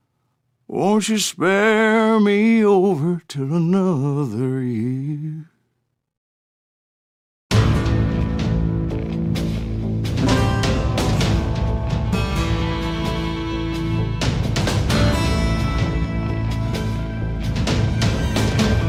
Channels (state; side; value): identical; both; correlation 1.00